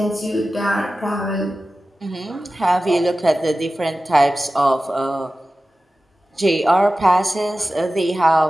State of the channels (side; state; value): both; normal; correlation 0.95